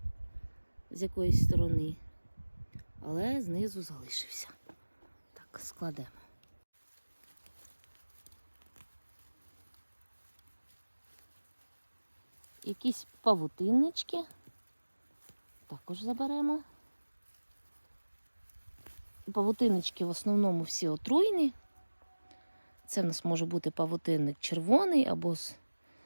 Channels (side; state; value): both; inverted; correlation -1.00